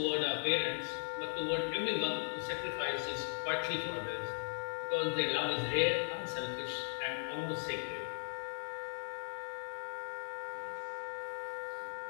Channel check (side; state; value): right; silent; digital silence